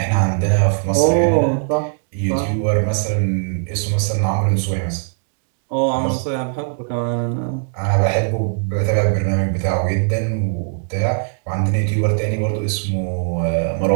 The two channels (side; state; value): left; silent; 60 dB below the other